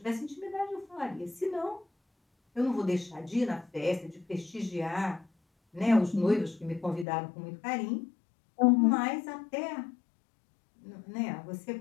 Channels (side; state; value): right; drops out; at 7.1 s